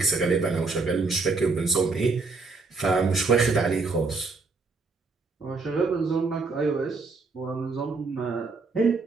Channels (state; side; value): quieter; left; 4.1 dB